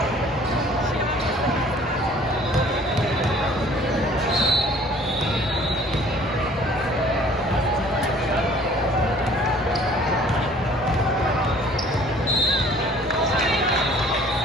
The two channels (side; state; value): both; normal; correlation 0.53